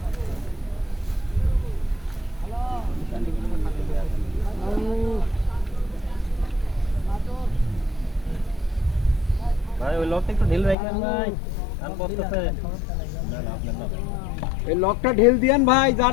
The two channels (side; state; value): right; drops out; at 10.8 s